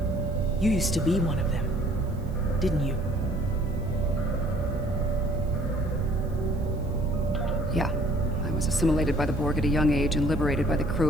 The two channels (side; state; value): right; noise; hiss, 29 dB below the sound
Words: you used to be one of them, didn't you? Yeah. I was assimilated by the Borg at a young age and liberated by the crew